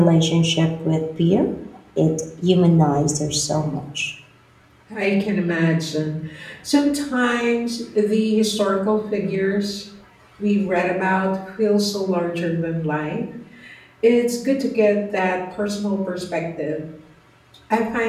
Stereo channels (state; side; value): identical; both; correlation 1.00